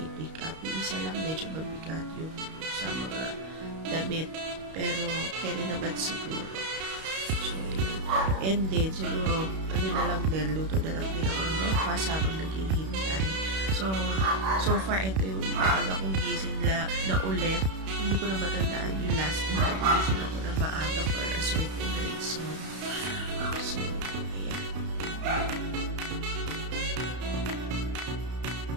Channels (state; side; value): late; left; 31 ms